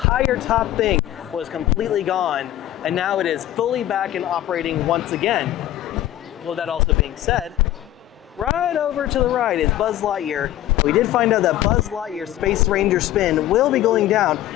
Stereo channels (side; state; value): right; quieter; 13.6 dB